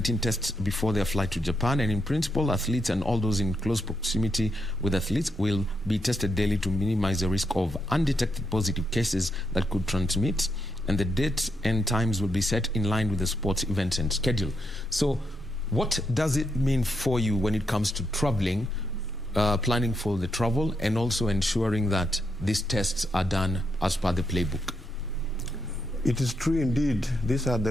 tests before their flight to Japan, and in principle, athletes and all those in close proximity with athletes will be tested daily to minimize the risk of undetected positive cases that could transmit, and the dates and times will be set in line with the sports event and schedule. So what does it mean for you when it comes to traveling, planning for the travel, and also ensuring that these tests are done as per the playbook? It is true indeed. These are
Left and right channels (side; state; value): both; normal; correlation 0.81